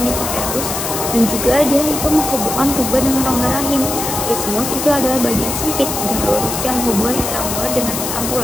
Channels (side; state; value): left; noise; hiss, 4 dB below the sound